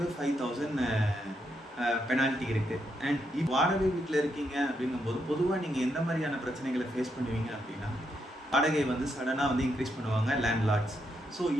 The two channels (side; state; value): both; normal; correlation 0.80